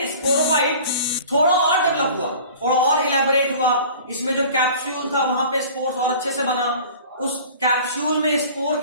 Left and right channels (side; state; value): both; inverted; correlation -0.43